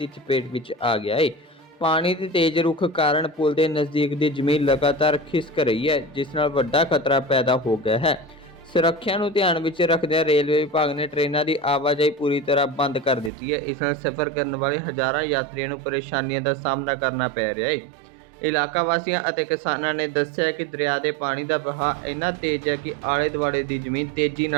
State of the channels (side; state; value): left; drops out; at 13.3 s